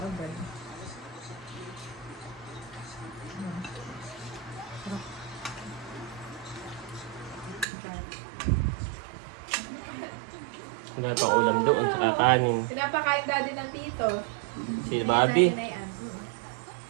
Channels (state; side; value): drops out; left; at 7.7 s